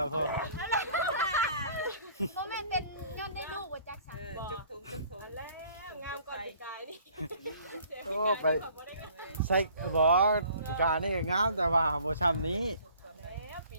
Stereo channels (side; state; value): both; inverted; correlation -0.54